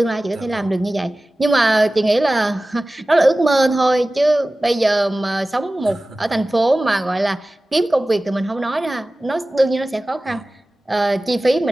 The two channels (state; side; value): normal; both; correlation 0.97